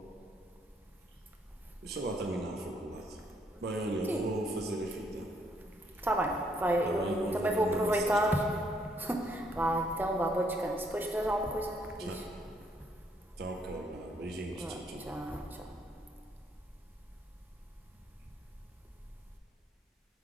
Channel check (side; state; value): both; normal; correlation 0.70